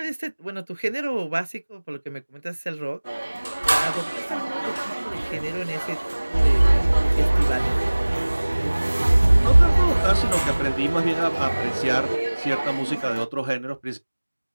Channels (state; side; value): inverted; both; correlation -1.00